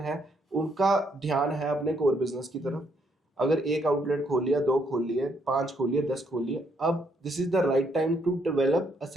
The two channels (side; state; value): both; normal; correlation 0.73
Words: उनका ध्यान है अपने कोर बिजनेस की तरफ। अगर एक आउटलेट खोल लिया, 2 खोल लिए, 5 खोल लिए, 10 खोल लिए, अब this is the right time to develop a